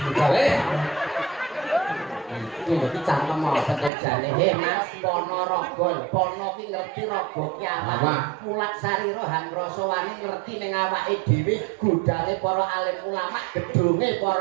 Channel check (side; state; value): left; drops out; at 3.9 s